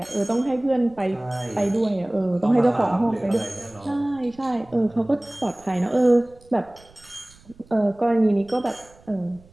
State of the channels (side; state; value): right; noise; rumble, 26 dB below the sound